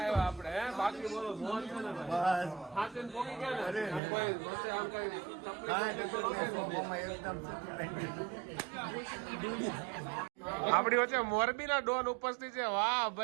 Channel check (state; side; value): drops out; left; at 4.0 s